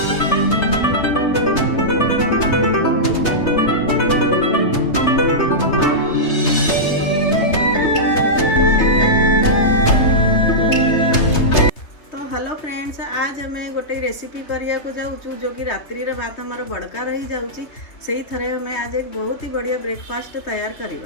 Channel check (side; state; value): right; late; 3.3 ms